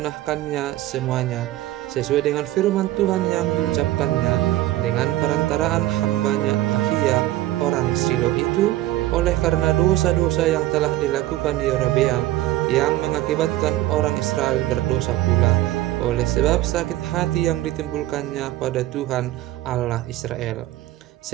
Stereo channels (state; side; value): quieter; left; 15.5 dB